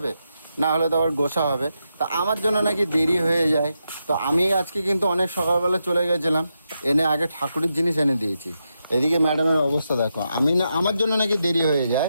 না হলে তো আবার গোসা হবে। তা আমার জন্য নাকি দেরি হয়ে যায়, তো আমি আজকে কিন্তু অনেক সকালবেলা চলে গেছিলাম, এনে আগে ঠাকুরের জিনিস এনে দিয়েছি। এদিকে ম্যাডামের অবস্থা দেখো, আমি না আমার জন্য নাকি দেরি হয়ে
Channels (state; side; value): inverted; both; correlation -0.86